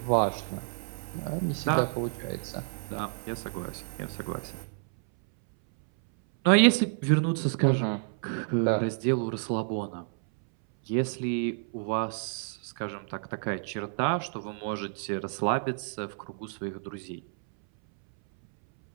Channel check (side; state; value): left; silent; 58 dB below the other